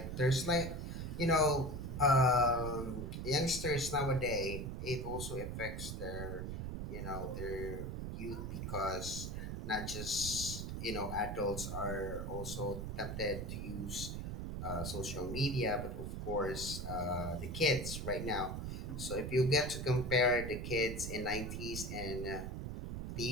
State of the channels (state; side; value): noise; right; rumble, 4 dB below the sound